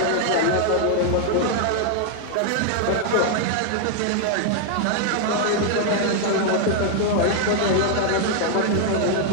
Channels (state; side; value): different; both; correlation 0.00